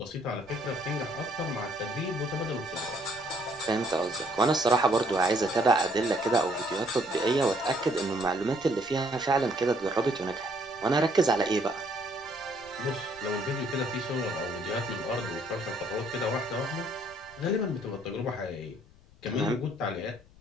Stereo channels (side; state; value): left; noise; rumble, 25 dB below the sound